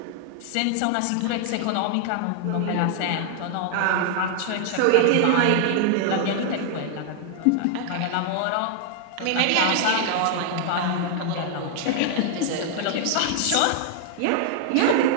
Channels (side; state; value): both; different; correlation 0.00